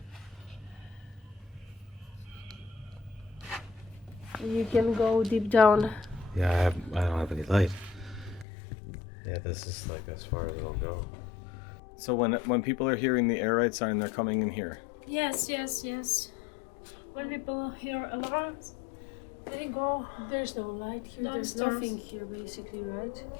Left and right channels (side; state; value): right; drops out; at 8.5 s